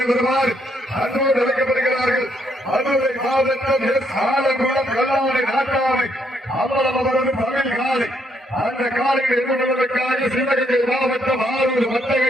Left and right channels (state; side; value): normal; both; correlation 0.73